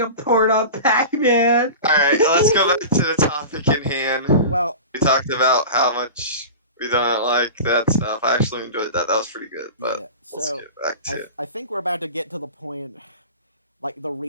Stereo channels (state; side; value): inverted; both; correlation -0.32